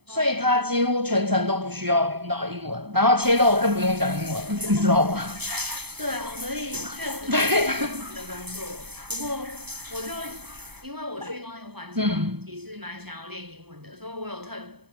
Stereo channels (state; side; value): late; left; 0.98 ms